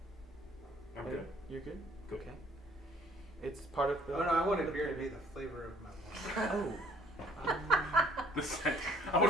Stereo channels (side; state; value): both; normal; correlation 0.59